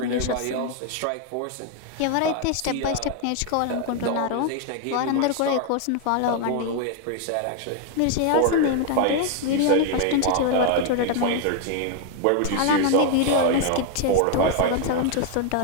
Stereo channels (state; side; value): different; both; correlation 0.00